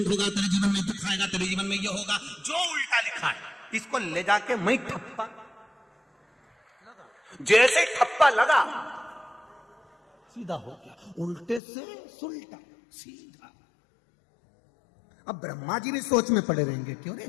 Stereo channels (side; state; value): right; drops out; at 11.6 s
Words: होगा, तेरे जीवन में दुख आएगा, तेरे जीवन में ये होगा, जो उल्टा लिखा है इसको ले जाके मैं ठप्पा, जैसे ठप्पा लगा सीधा हो गया, उल्टे से सुलटा सीधा। अब ब्रह्मा जी भी सोच में पड़े रहेंगे, क्यों रे